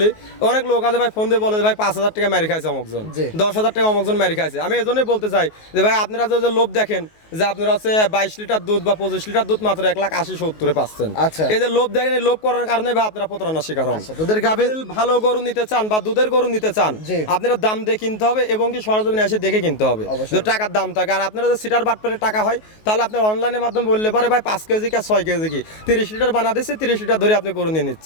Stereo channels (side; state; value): right; late; 19 ms